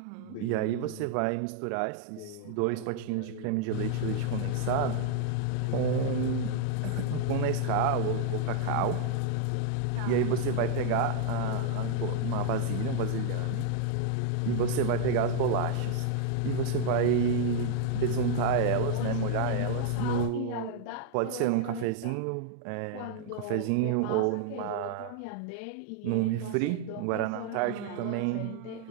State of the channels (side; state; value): both; different; correlation 0.00